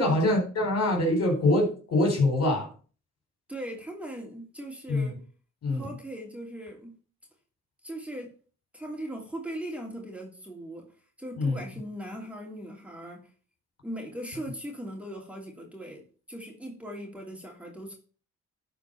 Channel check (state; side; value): normal; both; correlation 0.53